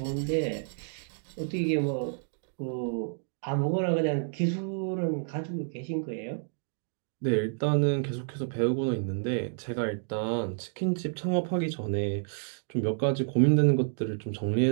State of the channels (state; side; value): silent; left; digital silence